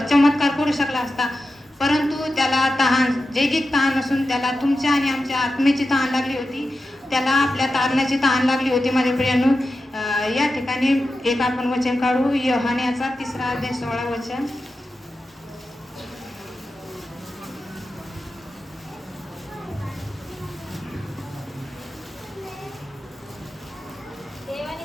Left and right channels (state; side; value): normal; both; correlation 0.91